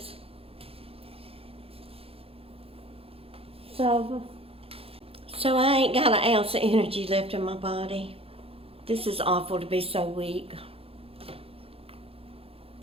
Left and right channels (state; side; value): late; left; 0.28 ms